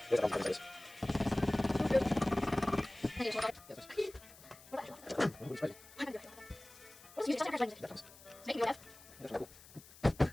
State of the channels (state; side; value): noise; left; hiss, 21 dB below the sound